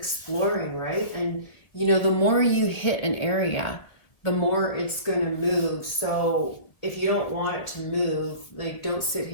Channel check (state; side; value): late; right; 1.7 ms